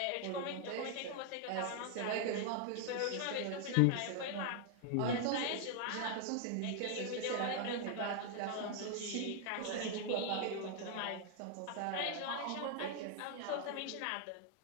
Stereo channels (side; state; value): both; different; correlation 0.00